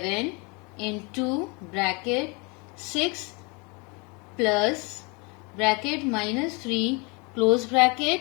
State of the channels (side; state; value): right; quieter; 30.2 dB